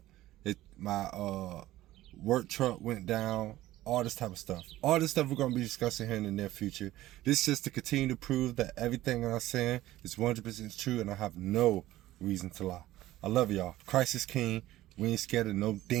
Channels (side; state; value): left; quieter; 15.5 dB